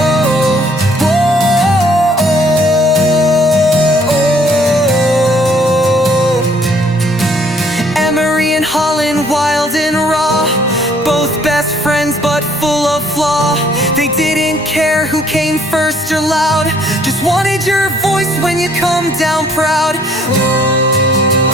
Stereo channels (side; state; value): both; normal; correlation 0.62